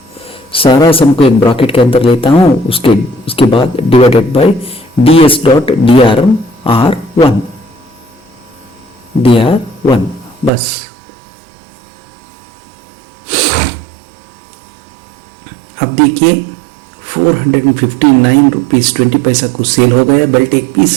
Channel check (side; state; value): left; drops out; at 10.5 s